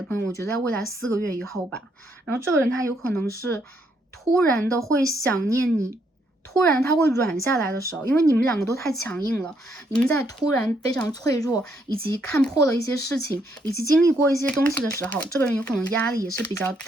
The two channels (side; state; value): both; normal; correlation 0.73